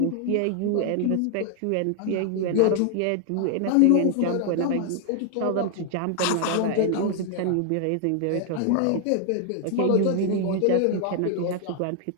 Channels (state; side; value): different; both; correlation 0.00